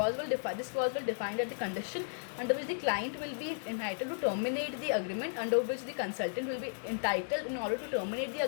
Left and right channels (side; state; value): right; silent; digital silence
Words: clause will define that the condition under which the client will be entitled to terminate the agreement, under which the consultant will be entitled in order to terminate the